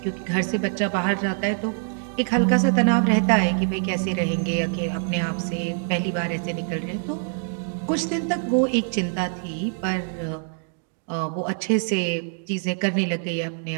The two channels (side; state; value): left; silent; 62 dB below the other